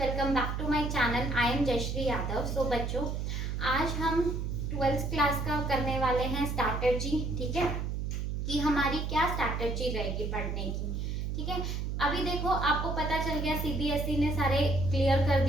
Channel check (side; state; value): right; noise; hum, 2 dB below the sound